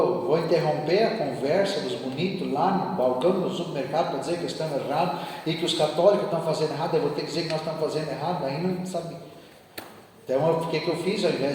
interromper a conversa dos bonitos lá no balcão do supermercado para dizer que estamos errados e que os católicos estão fazendo errado, eu vou ter que dizer que nós estamos fazendo errado, aí não sabe. Então, o que eu fiz? Ao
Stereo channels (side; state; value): both; identical; correlation 1.00